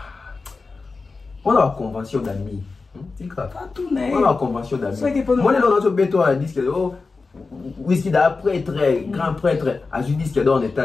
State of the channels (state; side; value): quieter; right; 4.1 dB